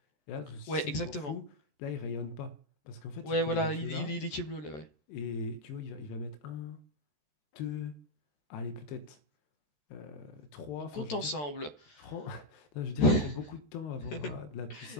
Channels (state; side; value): late; right; 14 ms